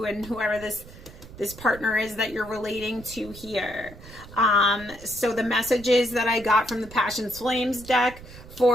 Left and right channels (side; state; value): right; noise; rumble, 17 dB below the sound